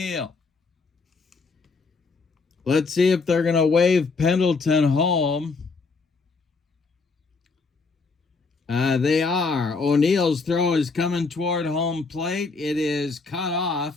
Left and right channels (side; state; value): right; quieter; 4.3 dB